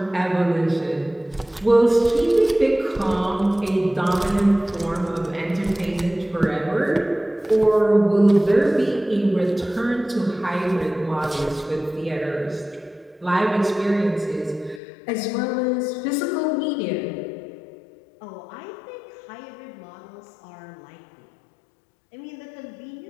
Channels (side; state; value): right; drops out; at 14.8 s